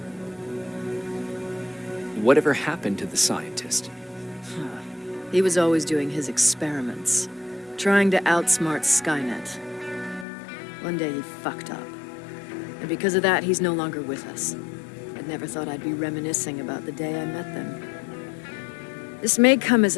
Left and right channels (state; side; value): drops out; right; at 10.2 s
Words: Whatever happened to the scientist? He was always doing his experiments, trying to outsmart Skynet. One day he fucked up, and because of that, he's no longer with us. I'd never thought I'd be reminiscing about the day I met them. This may come as